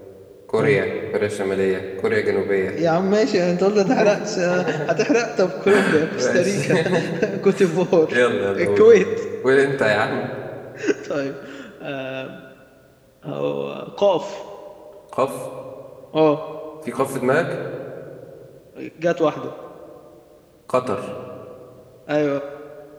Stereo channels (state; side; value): identical; both; correlation 1.00